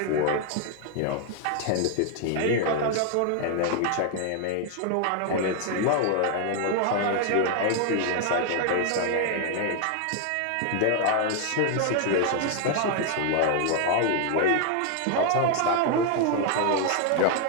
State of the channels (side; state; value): both; different; correlation 0.00